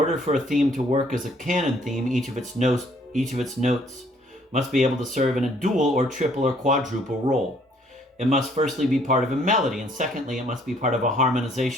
for a theme to work as a canon theme, each of its notes must be able to serve in a dual or triple or quadruple role. It must firstly be part of a melody, and secondly, it must be part of a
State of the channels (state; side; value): normal; both; correlation 0.63